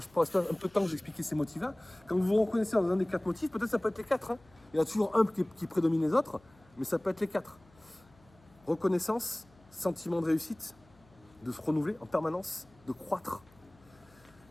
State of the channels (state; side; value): noise; left; hum, 29 dB below the sound